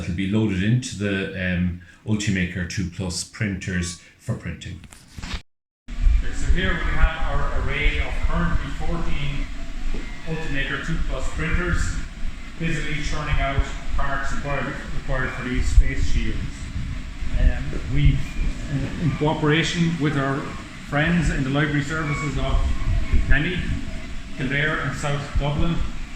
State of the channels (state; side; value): identical; both; correlation 1.00